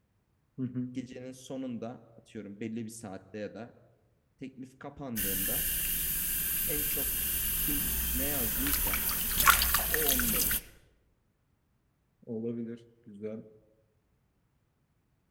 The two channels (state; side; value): identical; both; correlation 1.00